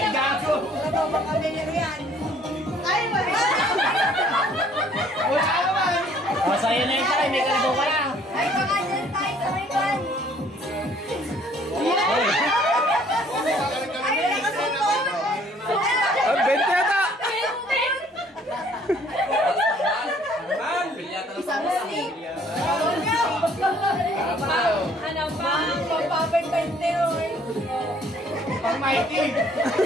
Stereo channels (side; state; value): both; normal; correlation 0.59